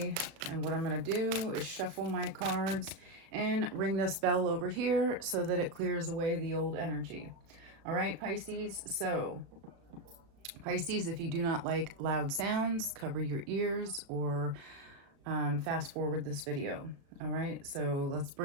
And what I'm going to do is shuffle my cards and ring this bell over here so that it clears away the old energy. All right, Pisces. So, Pisces, if you do not like loud sounds, cover your ears or fast forward this video. All right, so let's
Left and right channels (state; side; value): late; left; 36 ms